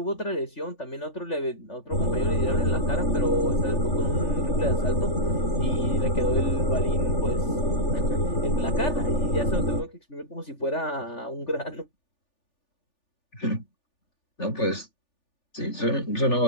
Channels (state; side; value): late; right; 3.4 ms